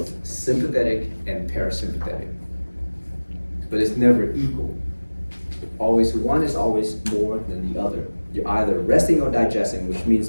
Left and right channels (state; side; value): inverted; both; correlation -1.00